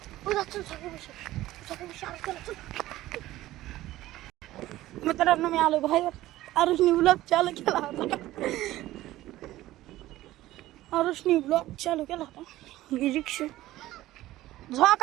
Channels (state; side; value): quieter; left; 15.8 dB